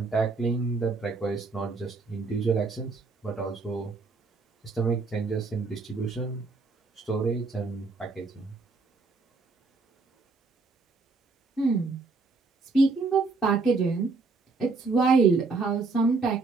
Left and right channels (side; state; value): left; quieter; 4.0 dB